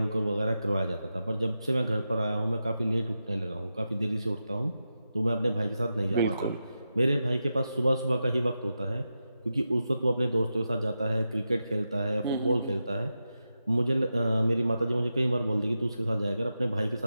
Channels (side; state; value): both; inverted; correlation -0.89